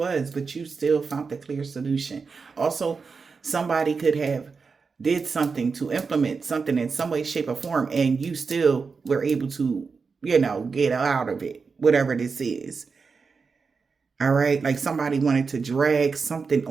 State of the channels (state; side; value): quieter; left; 5.0 dB